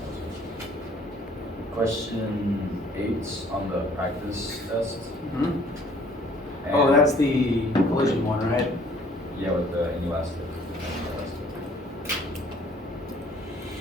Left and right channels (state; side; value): normal; both; correlation 0.58